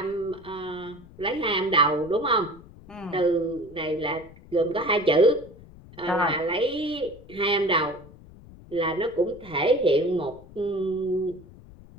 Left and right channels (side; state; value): left; noise; rumble, 20 dB below the sound